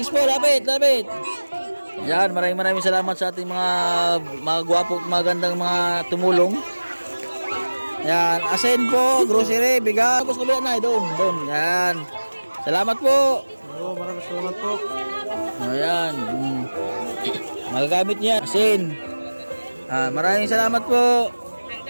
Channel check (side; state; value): both; inverted; correlation -1.00